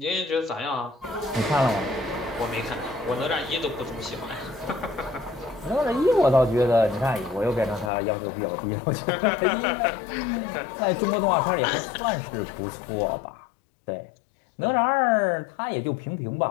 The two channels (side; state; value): right; drops out; at 7.9 s